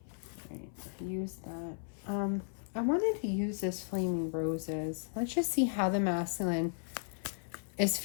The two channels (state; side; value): silent; right; 54 dB below the other